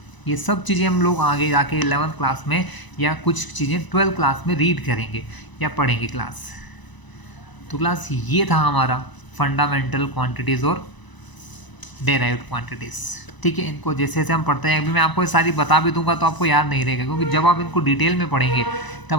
ये सब चीज़ें हम लोग आगे जाके 11th क्लास में या कुछ चीज़ें 12th क्लास में रीड करेंगे या पढ़ेंगे क्लास। तो क्लास ये था हमारा फंडामेंटल क्वांटिटीज़ और डेराइव्ड क्वांटिटीज़, ठीक है। इनको जैसे जैसे हम पढ़ते हैं, अभी मैं आपको ये सारी बता भी दूंगा तो आपको याद नहीं रहेगा, क्योंकि जब आप इनको डिटेल में पढ़ेंगे तब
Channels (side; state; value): right; late; 1.0 ms